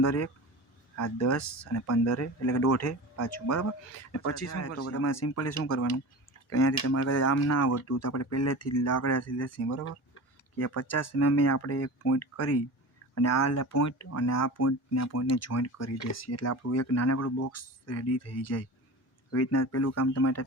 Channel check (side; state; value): both; normal; correlation 0.33